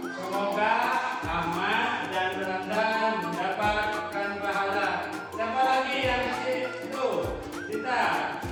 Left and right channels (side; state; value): both; identical; correlation 1.00